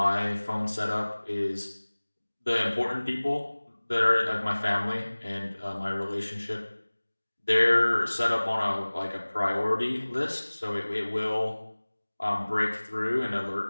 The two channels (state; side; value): inverted; both; correlation -1.00